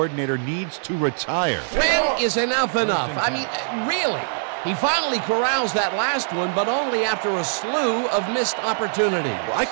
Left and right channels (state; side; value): silent; left; 64 dB below the other